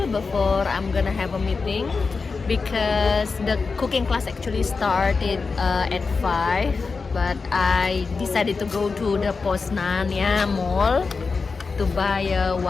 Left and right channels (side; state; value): right; quieter; 4.6 dB